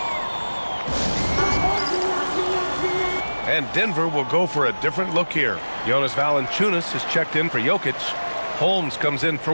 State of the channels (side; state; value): both; inverted; correlation -1.00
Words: And Denver will go for a different look here. Jonas Valanciunas has checked in for Jokic. Holmes comes in for